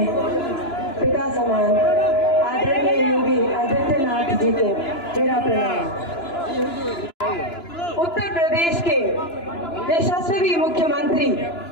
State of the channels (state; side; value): late; right; 2.9 ms